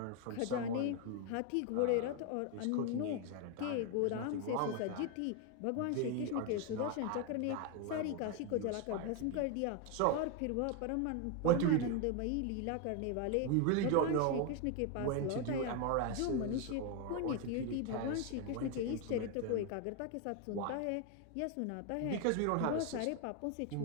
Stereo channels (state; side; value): different; both; correlation 0.01